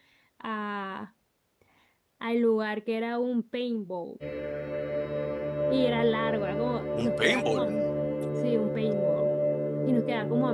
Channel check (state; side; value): identical; both; correlation 1.00